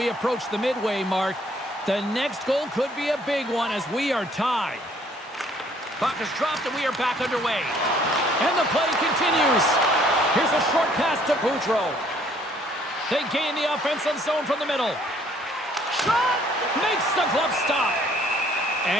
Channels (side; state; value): both; normal; correlation 0.62